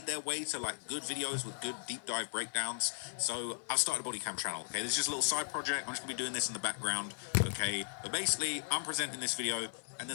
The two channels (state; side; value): silent; right; 53 dB below the other